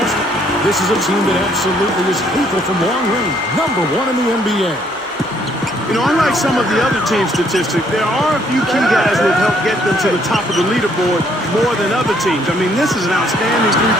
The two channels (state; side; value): normal; both; correlation 0.67